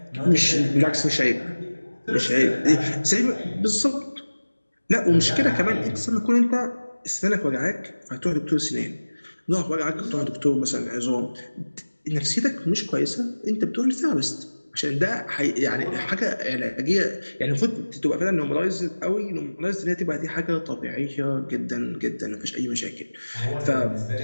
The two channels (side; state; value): both; inverted; correlation -1.00